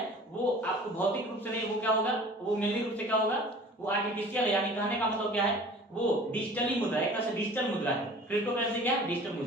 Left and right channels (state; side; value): normal; both; correlation 0.45